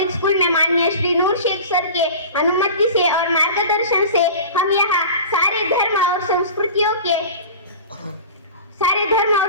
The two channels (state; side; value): inverted; both; correlation -0.35